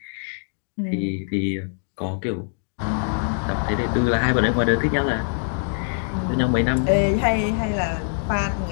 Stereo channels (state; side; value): silent; right; 63 dB below the other